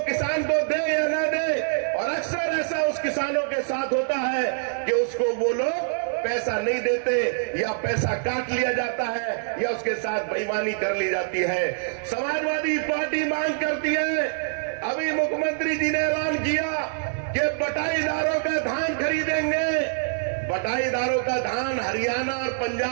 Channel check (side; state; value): left; silent; 62 dB below the other